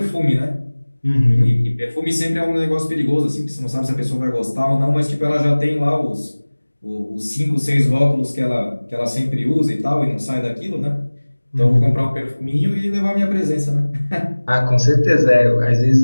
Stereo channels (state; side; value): inverted; both; correlation -1.00